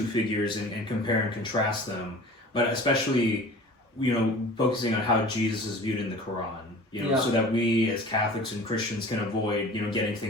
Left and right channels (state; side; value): normal; both; correlation 0.42